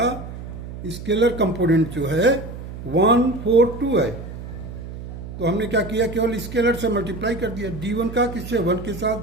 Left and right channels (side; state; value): right; noise; hum, 10 dB below the sound